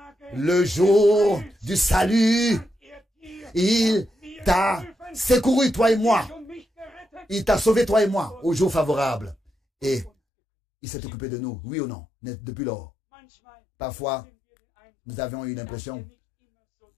Le jour du salut, il t'a secouru, toi et moi. Il t'a sauvé, toi et moi, au jour favorable. Et il s'est occupé de nous, oui ou non, depuis lors. Parfois, nous avions eu l'impression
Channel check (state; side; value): drops out; right; at 10.1 s